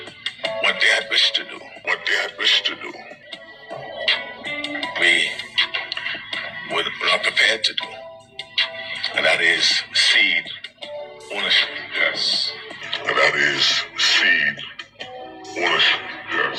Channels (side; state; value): both; identical; correlation 1.00